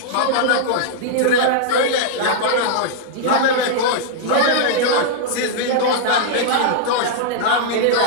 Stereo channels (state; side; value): different; both; correlation -0.01